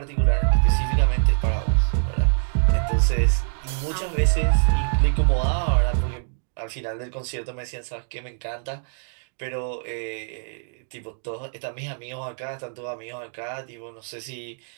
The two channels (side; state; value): left; silent; digital silence